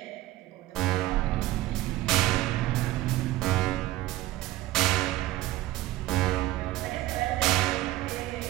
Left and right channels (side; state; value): left; quieter; 16.1 dB